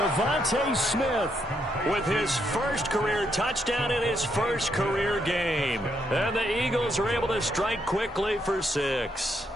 Smith with his first career touchdown in his first career game. And the Eagles are able to strike quickly for 6.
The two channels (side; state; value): both; normal; correlation 0.77